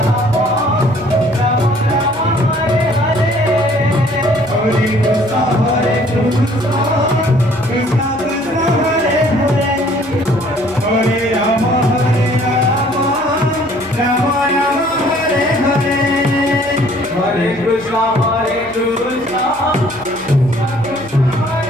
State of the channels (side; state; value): left; noise; hum, 24 dB below the sound